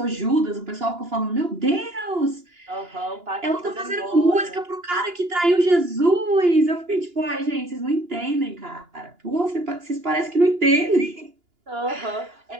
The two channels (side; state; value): left; late; 2.9 ms